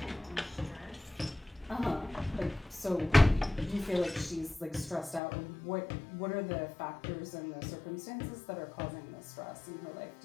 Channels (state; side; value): drops out; right; at 5.2 s